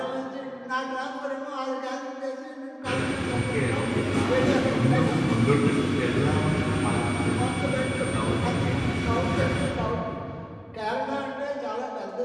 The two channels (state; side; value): identical; both; correlation 1.00